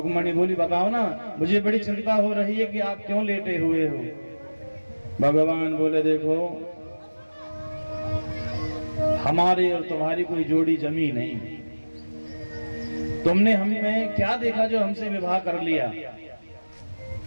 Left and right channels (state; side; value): inverted; both; correlation -1.00